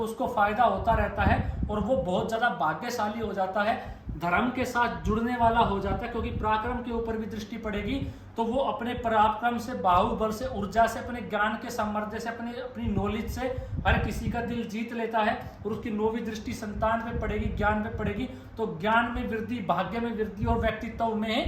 फायदा होता रहता है और वो बहुत ज्यादा भाग्यशाली हो जाता है, धर्म के साथ जुड़ने वाला हो जाता है। क्योंकि पराक्रम के ऊपर भी दृष्टि पड़ेगी तो वो अपने पराक्रम से, बाहुबल से, ऊर्जा से, अपने ज्ञान के सामर्थ्य से, अपनी नॉलेज से हर किसी का दिल जीत लेता है। और उसकी नौवीं दृष्टि संतान पे पड़ेगी, ज्ञान पे पड़ेगी, तो ज्ञान में वृद्धि, भाग्य में वृद्धि और व्यक्तित्व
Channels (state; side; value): identical; both; correlation 1.00